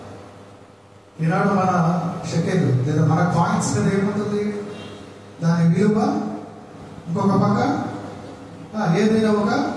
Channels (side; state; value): both; identical; correlation 1.00